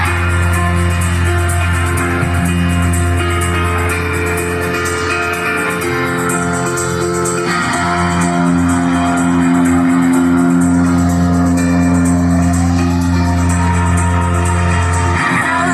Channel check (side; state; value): both; identical; correlation 1.00